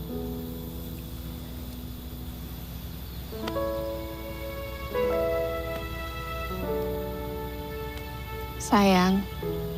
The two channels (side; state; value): both; identical; correlation 1.00